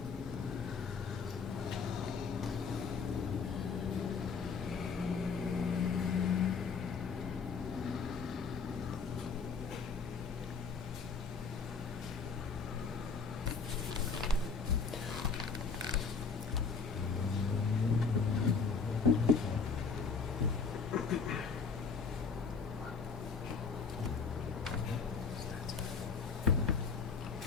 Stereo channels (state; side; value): quieter; right; 5.2 dB